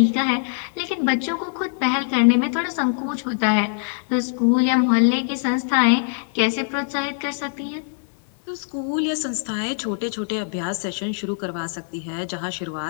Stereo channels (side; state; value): right; silent; 64 dB below the other